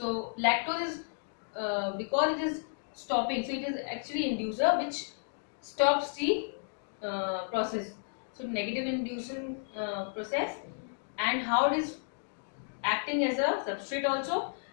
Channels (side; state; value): right; silent; digital silence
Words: lactose is because it is stopping, so it is actually inducer which stops the process. So negative inducing process, and how it is acting as a substrate also,